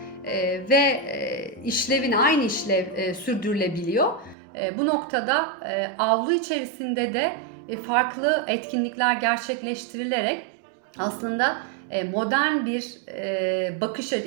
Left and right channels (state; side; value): drops out; left; at 4.4 s